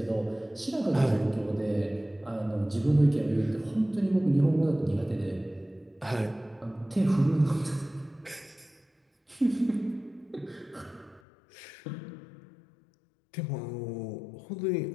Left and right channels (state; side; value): drops out; right; at 11.2 s